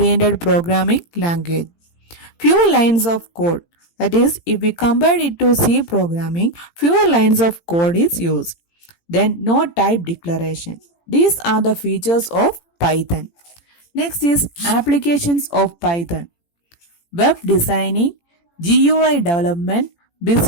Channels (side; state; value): right; late; 18 ms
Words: programming language. Few lines of code. That is, if we compare it to C programming, fewer lines of code is used. Then no type declaration. These are the features of Python. Next is applications of Python. Web designing, GUI development,